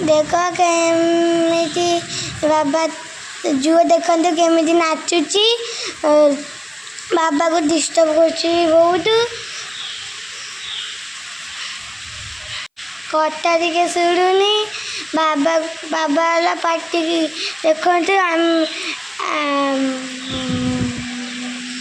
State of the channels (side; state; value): both; identical; correlation 1.00